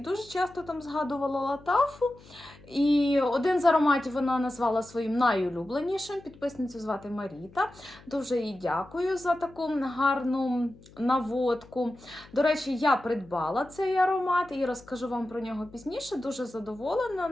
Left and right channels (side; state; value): left; noise; hum, 23 dB below the sound